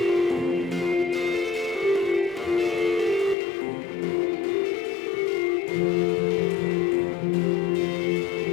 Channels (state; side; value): drops out; right; at 3.4 s